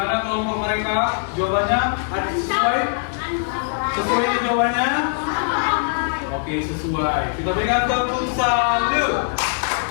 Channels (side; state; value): right; silent; digital silence